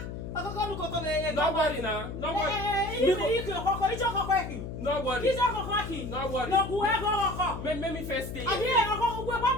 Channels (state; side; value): noise; left; hum, 8 dB below the sound